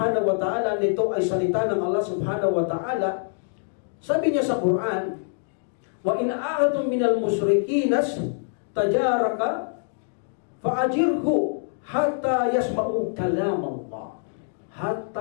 wa ta'ala, nito ay salita ng Allah subhanahu wa ta'ala, sabi niya sa Quran, wa in a'atum minal musrikinas tajaraka fa'ajirhu hatta yasma'u kalam Allah.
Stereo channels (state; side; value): silent; right; digital silence